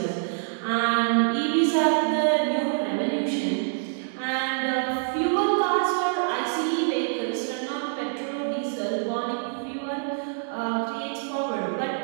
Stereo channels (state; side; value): silent; left; digital silence